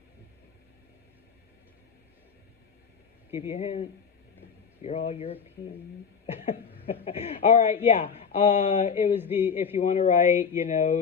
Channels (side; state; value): right; quieter; 6.4 dB